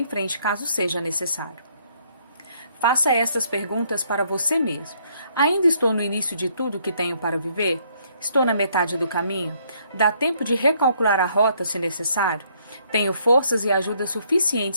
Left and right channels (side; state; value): both; inverted; correlation -0.68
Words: frente caso seja necessário. Faça estas perguntas para você mesmo. Ainda estou no início de tudo que tenho para viver? Estou na metade do caminho? Dá tempo de recalcular a rota se necessário? Tenho forças e ajuda